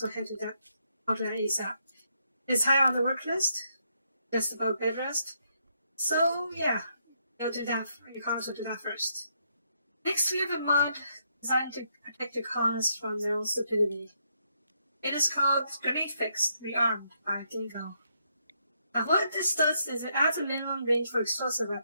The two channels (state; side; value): inverted; both; correlation -0.76